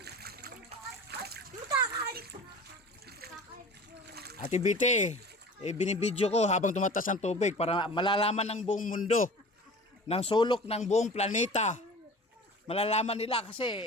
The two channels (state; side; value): normal; both; correlation 0.40